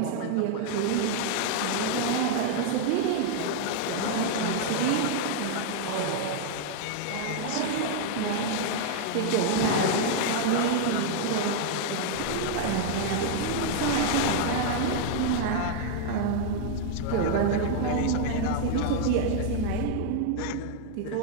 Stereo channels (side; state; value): both; different; correlation 0.00